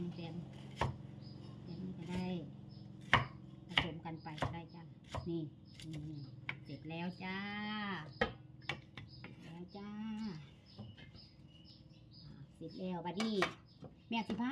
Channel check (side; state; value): both; identical; correlation 1.00